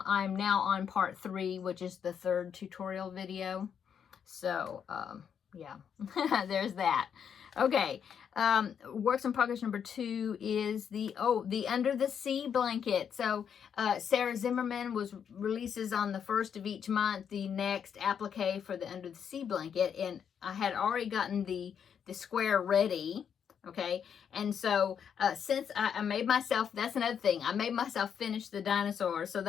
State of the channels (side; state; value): right; quieter; 7.8 dB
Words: now on part 3, which is the 3rd tutorial video. So, yeah, there's that. Okay, works in progress number 2 is the Under the Sea blanket. So Sarah Zimmerman releases on the 1st of each month the next applique for the Under the Sea blanket, and I had already gotten the square ready. Okay, and so since I made myself, that's another thing, I made myself finish the dinosaur so